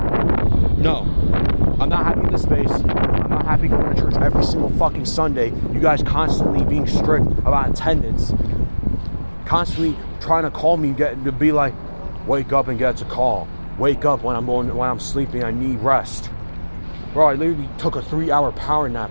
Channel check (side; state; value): both; inverted; correlation -1.00